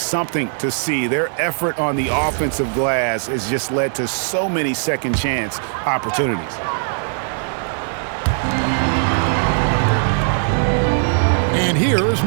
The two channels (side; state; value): left; silent; digital silence